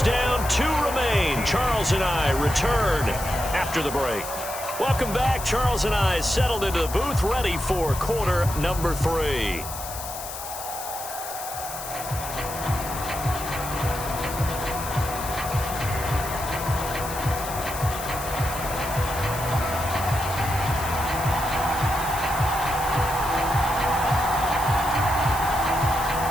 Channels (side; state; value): left; noise; hiss, 9 dB below the sound